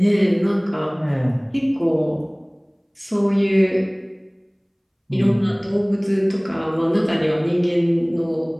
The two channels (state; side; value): identical; both; correlation 1.00